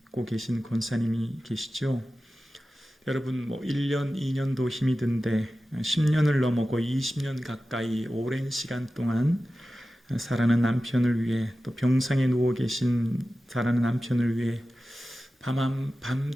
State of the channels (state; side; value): normal; both; correlation 0.94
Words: 계신 권사님이 계시죠. 여러분 1년, 2년도 힘이 든데 10년을 넘어고 20년 가까이 오랜 시간 동안 사랑하는 남편을 위해 또 병상에 누워 계신 사랑하는 남편을 위해